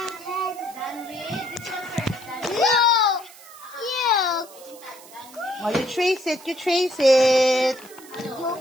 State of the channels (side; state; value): right; noise; hiss, 20 dB below the sound